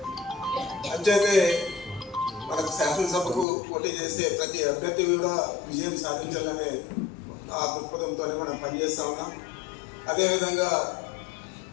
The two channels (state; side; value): drops out; right; at 3.5 s